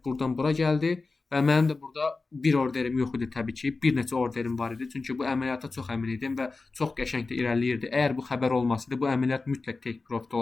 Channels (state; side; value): quieter; right; 3.8 dB